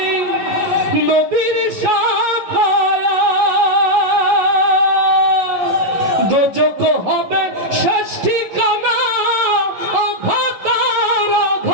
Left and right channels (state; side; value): late; left; 11 ms